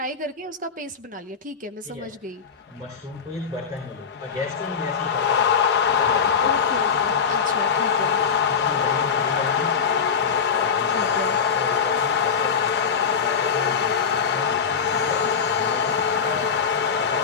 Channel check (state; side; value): quieter; right; 6.3 dB